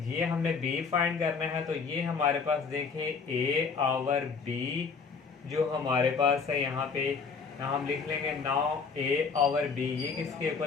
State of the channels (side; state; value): right; quieter; 5.3 dB